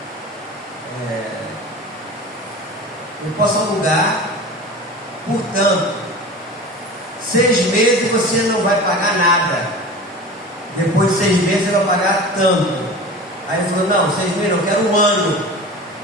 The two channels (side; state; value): both; normal; correlation 0.34